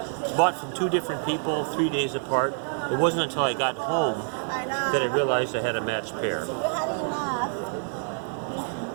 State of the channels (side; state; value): left; silent; digital silence